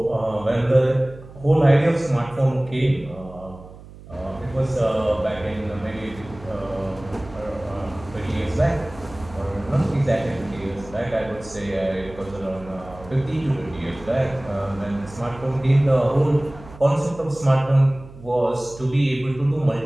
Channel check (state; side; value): noise; right; hum, 18 dB below the sound